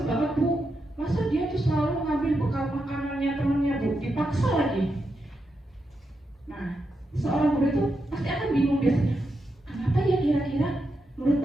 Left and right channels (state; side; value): normal; both; correlation 0.85